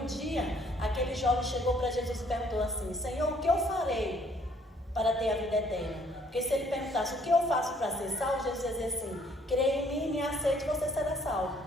dia aquele jovem chegou para Jesus e perguntou assim: Senhor, o que eu farei para ter a vida eterna? Porque se ele perguntasse o que eu faço para ser salvo, Jesus ia dizer assim: creia em mim, me aceite, você será salvo.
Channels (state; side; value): normal; both; correlation 0.63